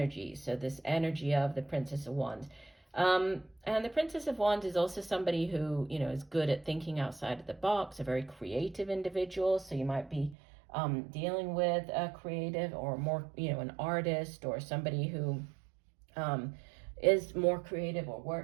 So this energy of the Princess of Wands. And the Princess of Wands is also somebody who, you know, is good at thinking outside of the box, a very creative individual. So you might be dealing with a creative or more, you know, an artist or somebody who is more creative or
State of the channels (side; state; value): left; drops out; at 10.4 s